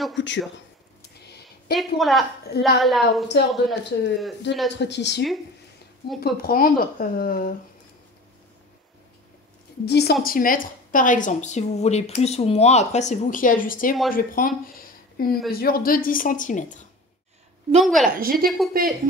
couture. Et pour la hauteur de notre tissu, on peut prendre 10 cm par exemple. Si vous voulez plus ou moins, après c'est vous qui ajustez. Moi je vais prendre une mesure de 10 cm. Donc voilà, j'ai découpé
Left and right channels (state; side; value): normal; both; correlation 0.37